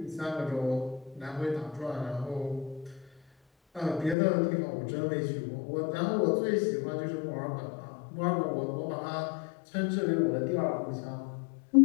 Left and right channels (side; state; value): right; drops out; at 4.2 s